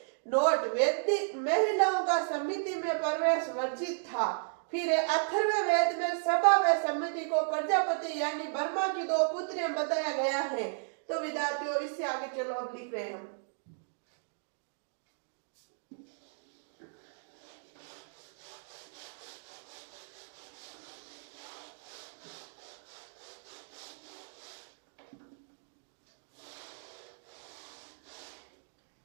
नोट, वैदिक महिलाओं का समिति में प्रवेश वर्जित था। फिर अथर्ववेद में सभा व समिति को प्रजापति यानी ब्रह्मा की 2 पुत्रियां बताया गया है। तो विद्यार्थियों इससे आगे चलो, अब लिख रहे हैं हम।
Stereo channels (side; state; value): left; silent; digital silence